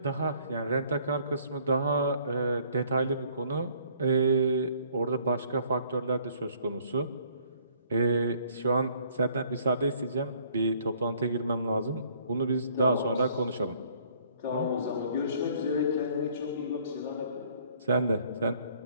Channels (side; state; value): both; inverted; correlation -0.61